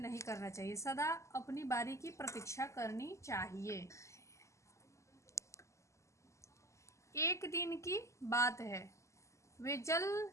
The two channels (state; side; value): late; right; 0.14 ms